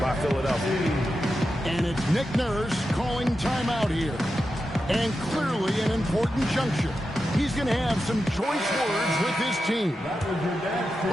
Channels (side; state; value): both; normal; correlation 0.90